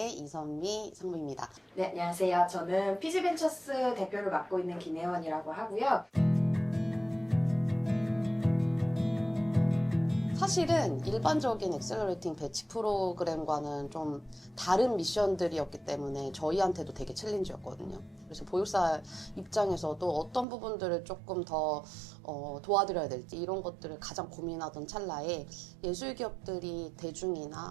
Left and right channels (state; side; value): drops out; left; at 20.5 s